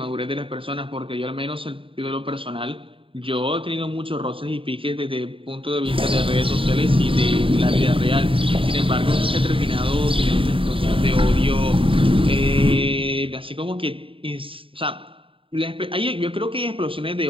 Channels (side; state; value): left; late; 0.26 ms